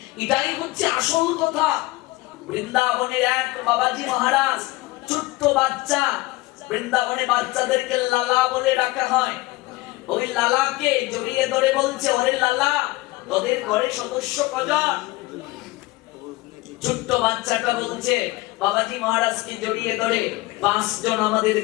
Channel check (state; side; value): quieter; right; 20.5 dB